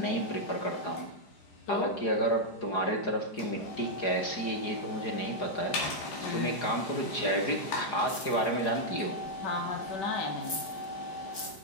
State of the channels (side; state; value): right; late; 5.0 ms